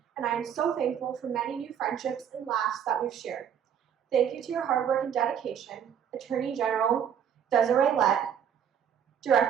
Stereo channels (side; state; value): left; quieter; 8.6 dB